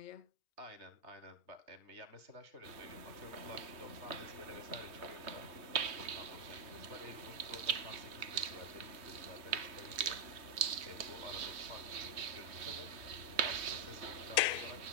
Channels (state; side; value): late; left; 3.1 ms